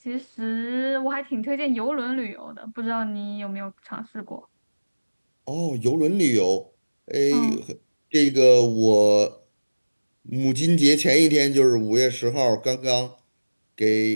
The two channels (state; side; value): inverted; both; correlation -1.00